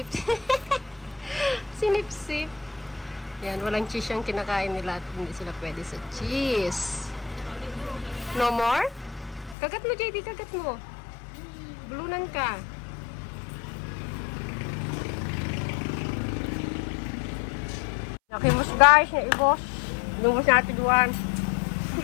Sinipsip. Yan, walang cheese yung kinakain nila at hindi sila pwede sa cheese. No more? Kagat mo, JD. Kagat mo. Bulunan ka. Nakimos guys, na ibos. Lumos natin duwan.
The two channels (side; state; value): right; drops out; at 9.6 s